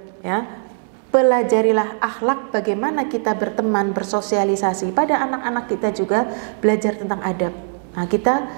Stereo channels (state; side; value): silent; left; 66 dB below the other